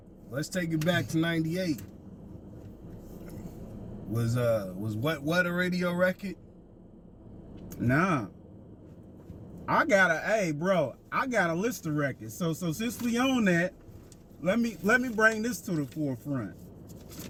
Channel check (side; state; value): both; identical; correlation 1.00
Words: Let's take it back to '98. Was what a radio record? Nah. I got a list of records. So since we on that, let me bring this to the forefront.